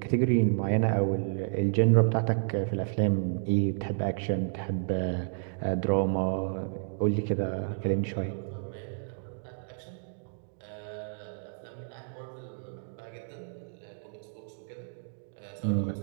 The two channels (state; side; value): silent; left; digital silence